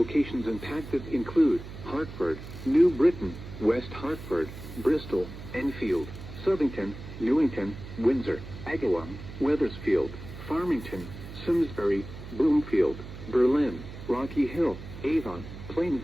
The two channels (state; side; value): noise; right; hum, 12 dB below the sound